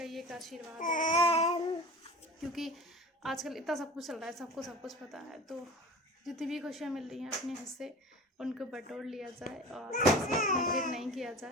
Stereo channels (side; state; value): both; normal; correlation 0.37